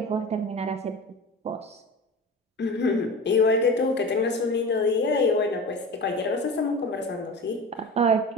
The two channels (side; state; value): both; normal; correlation 0.32